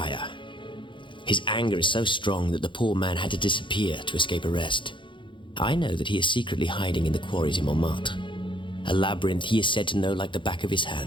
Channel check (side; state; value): right; late; 0.24 ms